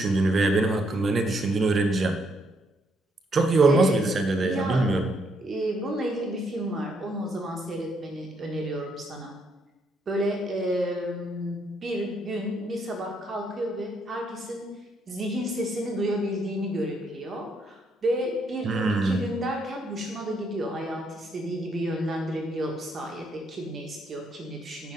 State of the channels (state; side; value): normal; both; correlation 0.73